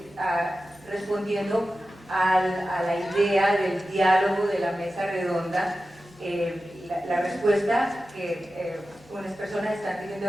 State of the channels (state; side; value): normal; both; correlation 0.94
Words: respondiendo a la idea del diálogo de la mesa redonda, la respuesta que unas personas están teniendo